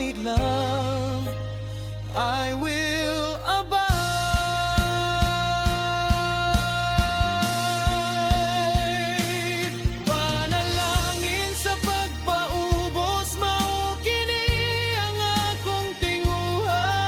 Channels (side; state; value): both; identical; correlation 1.00